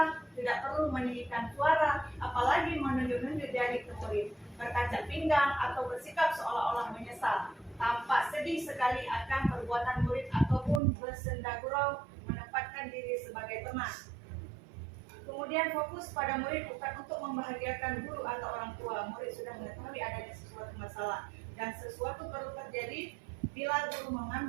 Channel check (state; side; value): drops out; left; at 10.8 s